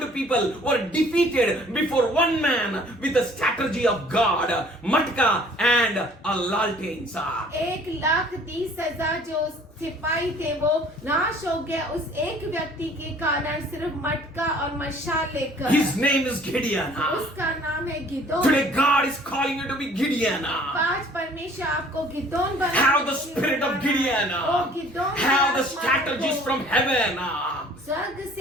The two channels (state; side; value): normal; both; correlation 0.54